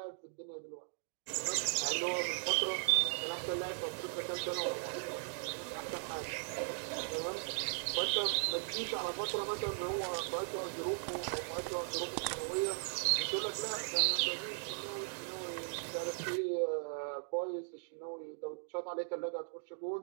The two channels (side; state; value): left; silent; digital silence